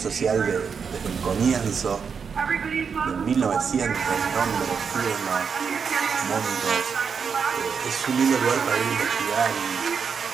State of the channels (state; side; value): quieter; left; 6.2 dB